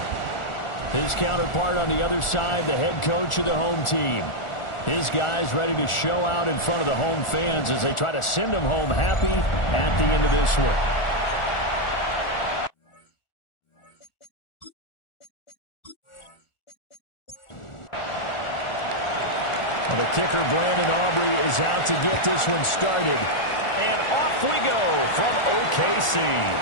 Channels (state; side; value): late; right; 1.4 ms